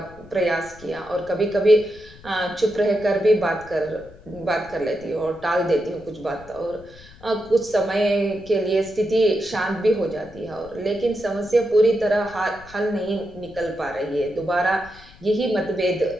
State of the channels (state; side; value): noise; left; rumble, 21 dB below the sound